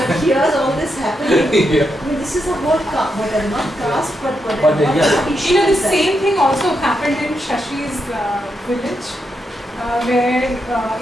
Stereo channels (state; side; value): normal; both; correlation 0.83